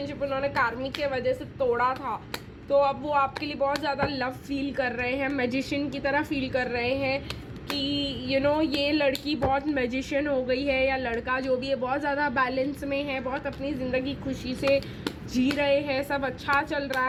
उन्होंने कार्मिक के वजह से तोड़ा था तो अब वो आपके लिए बहुत ज़्यादा लव फील कर रहे हैं, मैजिशियन की तरह फील कर रहे हैं कि ये लड़की बहुत मैजिशियन हो गई है, या लड़का जो भी है बहुत ज़्यादा बैलेंस में है, बहुत अपनी ज़िंदगी खुशी से जी रहे हैं, सब अच्छा चल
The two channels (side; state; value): both; identical; correlation 1.00